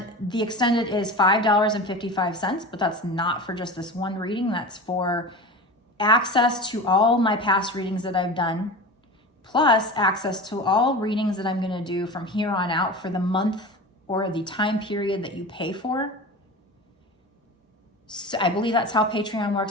the extended is $5.55, but that's not for just this one reading. That's for access to all my past readings that I've done, plus access to all readings that I'm going to do from here on out for the month or the time period that you pay for. So I believe that's how Patreon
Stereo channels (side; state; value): both; normal; correlation 0.31